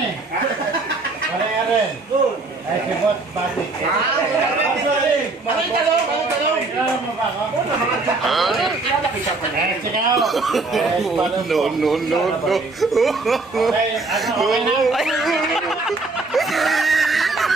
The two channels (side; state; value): left; quieter; 3.5 dB